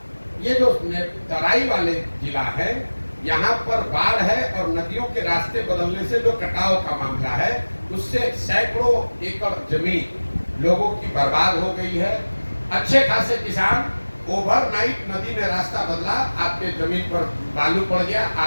ये जो तराई वाले जिला है, यहाँ पर बाढ़ है और नदियों के रास्ते बदलने से जो कटाव का मामला है, उससे सैकड़ों एकड़ जमीन लोगों की बर्बाद हो गई है। अच्छे खासे किसान, ओवरनाइट नदी ने रास्ता बदला, आपके जमीन पर बालू पड़ गया,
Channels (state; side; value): inverted; both; correlation -1.00